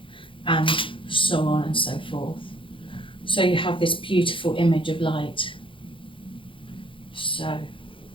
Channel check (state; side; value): late; right; 0.25 ms